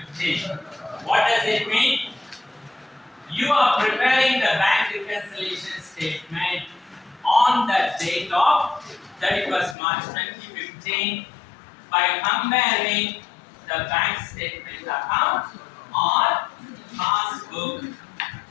What does it mean? You are preparing the bank reconciliation statement on the date of 31st March 2015 by comparing the bank statement account or passbook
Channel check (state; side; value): drops out; right; at 9.8 s